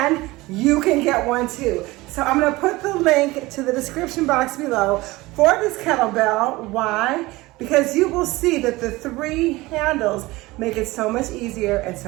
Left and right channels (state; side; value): quieter; left; 20.4 dB